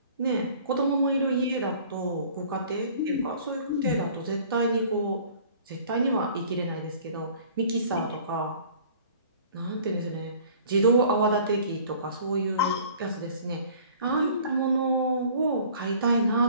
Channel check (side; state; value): both; inverted; correlation -0.50